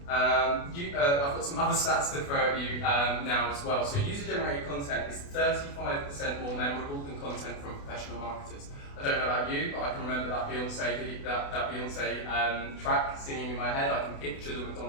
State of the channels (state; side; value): late; right; 28 ms